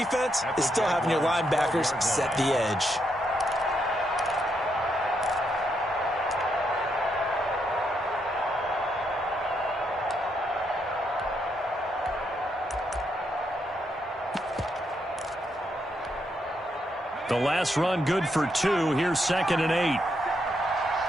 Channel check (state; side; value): normal; both; correlation 0.78